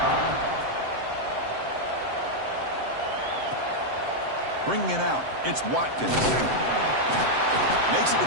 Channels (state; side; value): late; left; 7.7 ms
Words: Bringing it out, it's Watkins. Makes it to